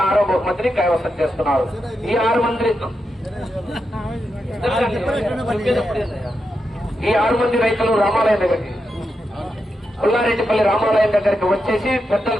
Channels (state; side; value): normal; both; correlation 0.86